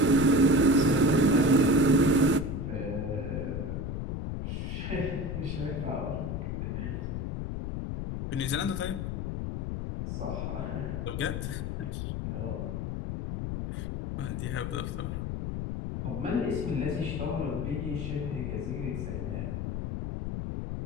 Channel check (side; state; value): left; noise; rumble, 3 dB below the sound